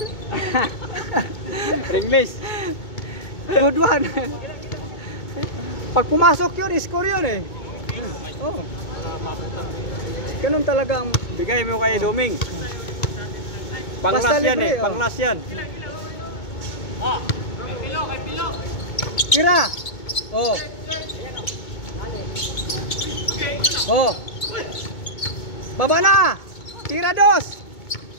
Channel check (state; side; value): late; right; 2.2 ms